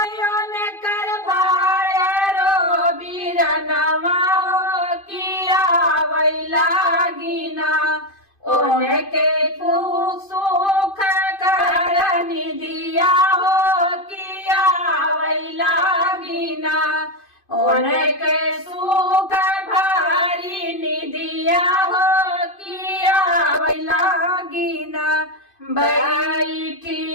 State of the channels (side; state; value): right; late; 2.5 ms